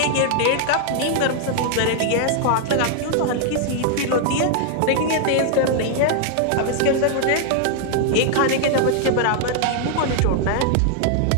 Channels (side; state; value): both; different; correlation 0.00